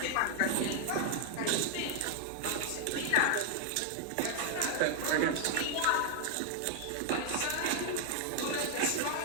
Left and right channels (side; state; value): both; different; correlation 0.00